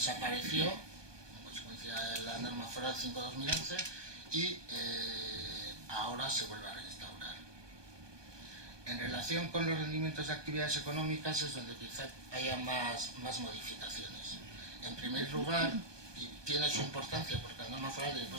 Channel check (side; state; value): left; late; 1.2 ms